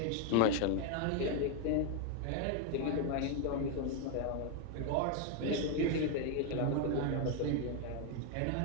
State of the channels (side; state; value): both; different; correlation 0.01